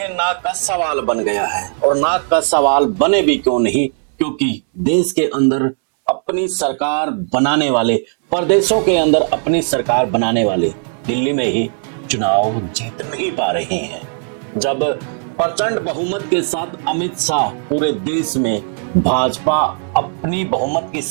नाक का सवाल बन गया है। और नाक का सवाल बने भी क्यों नहीं, क्योंकि देश के अंदर अपनी सरकार बनाने वाले, प्रदेशों के अंदर अपनी सरकार बनाने वाले दिल्ली में ही चुनाव जीत नहीं पा रहे हैं। जब प्रचंड बहुमत के साथ अमित शाह पूरे देश में भाजपा अपनी बहुमत की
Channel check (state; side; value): silent; left; 59 dB below the other